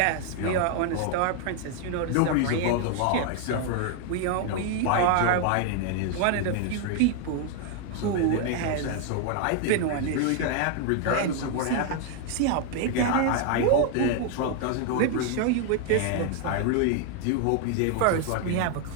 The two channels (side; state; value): both; different; correlation 0.00